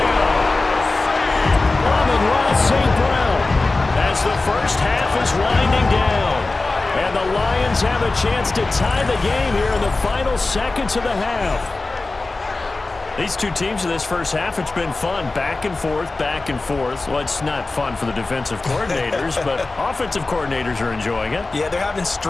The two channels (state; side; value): quieter; right; 3.4 dB